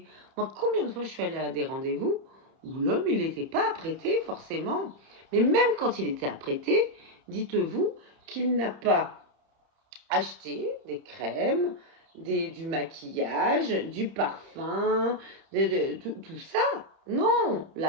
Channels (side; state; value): left; late; 31 ms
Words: Moi, combien de fois je suis allée à des rendez-vous où l'homme, il n'était pas apprêté forcément. Mais même quand il était apprêté, dites-vous qu'il n'a pas acheté des crèmes, du maquillage, du parfum, tout ça. Non,